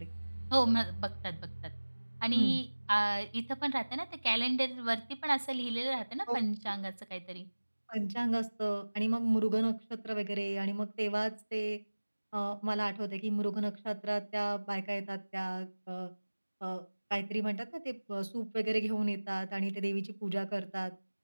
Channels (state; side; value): inverted; both; correlation -1.00